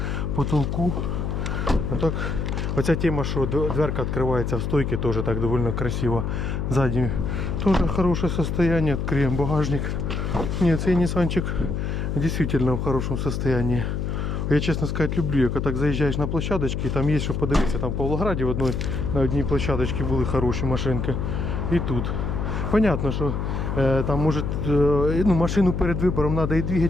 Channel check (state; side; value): noise; left; hum, 1 dB below the sound